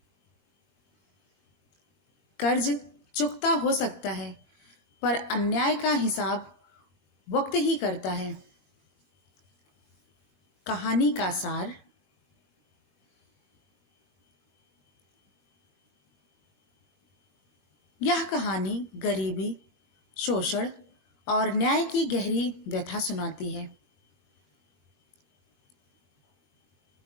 कर्ज चुकता हो सकता है, पर अन्याय का हिसाब वक्त ही करता है। कहानी का सार, यह कहानी गरीबी, शोषण और न्याय की गहरी व्यथा सुनाती है।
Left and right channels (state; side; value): late; right; 20 ms